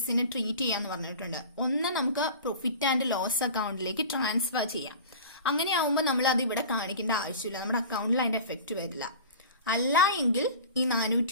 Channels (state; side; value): inverted; both; correlation -0.37